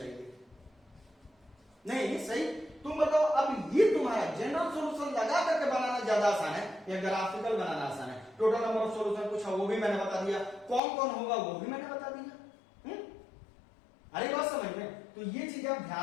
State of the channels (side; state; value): right; drops out; at 10.8 s